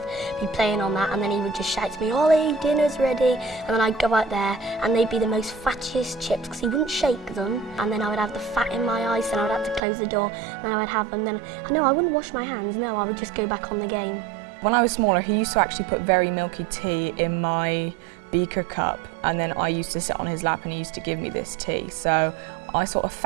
be playing on that, and then he would just shout to me, "Ollie, dinner's ready," and then I'd go out there and they'd be the most fattiest chips because he wouldn't shake them, and then I would have the fat in my eyes and I would have to close the door, and then I would have them, then I wouldn't wash my hands, no, I would just go back on the game. When I was smaller, he used to actually put very milky tea in my beaker cup, and then I used to sit on his lap and he used to give me this tea. So I sort of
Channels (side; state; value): left; drops out; at 9.8 s